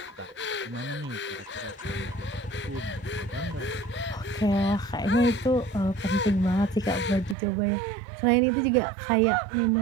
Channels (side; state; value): left; drops out; at 7.4 s